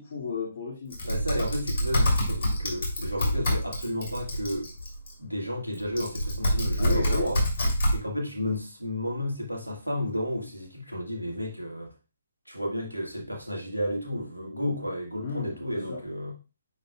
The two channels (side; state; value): both; inverted; correlation -0.82